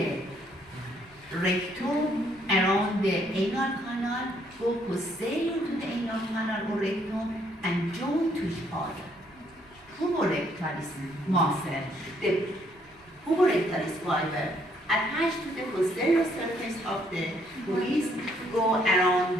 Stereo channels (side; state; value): both; normal; correlation 0.68